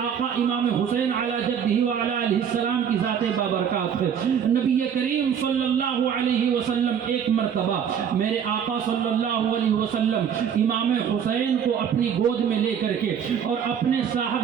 امام حسین علی جدہ وعلی آلہ السلام کی ذات بابرکات ہے۔ نبی کریم صلی اللہ علیہ وسلم ایک مرتبہ میرے آقا صلی اللہ علیہ وسلم امام حسین کو اپنی گود میں لے کر کے اور اپنے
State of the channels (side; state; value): left; quieter; 8.0 dB